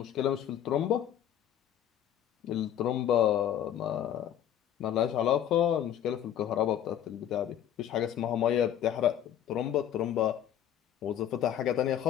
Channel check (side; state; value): right; quieter; 10.5 dB